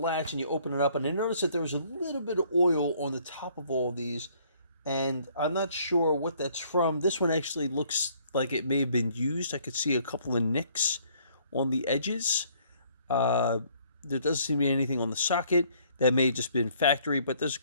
and you open it up, and I noticed that there was a little bit of oil on the top of all of these, and I'm not sure what that's from. This one actually looks like it may have been used. I could see a couple of nicks on the edges. There doesn't seem to be anything on the socket. That may have just been factory, but there's a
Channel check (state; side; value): inverted; both; correlation -0.62